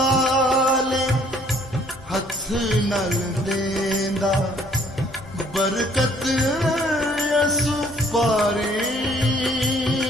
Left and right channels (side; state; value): both; normal; correlation 0.60